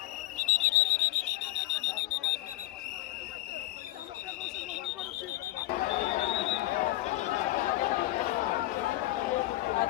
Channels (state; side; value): quieter; right; 17.3 dB